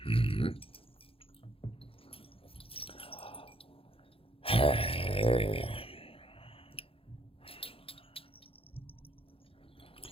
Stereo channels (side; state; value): right; late; 0.27 ms